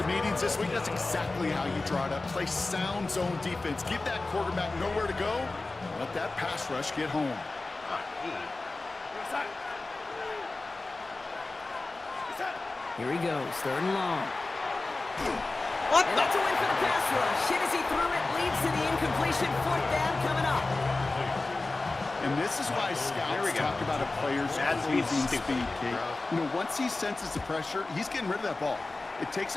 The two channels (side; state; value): right; quieter; 3.3 dB